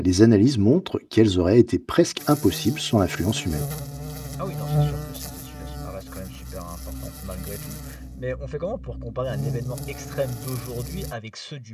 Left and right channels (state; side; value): identical; both; correlation 1.00